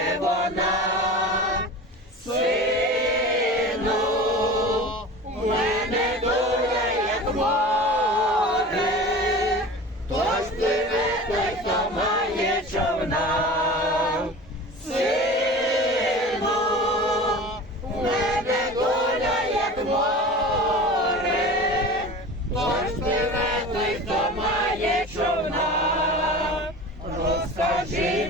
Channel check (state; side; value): normal; both; correlation 0.36